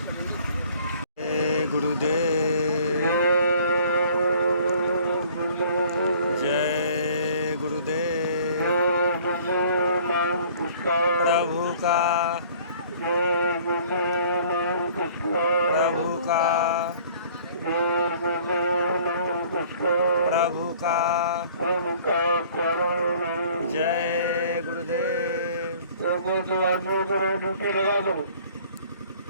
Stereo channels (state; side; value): inverted; both; correlation -0.53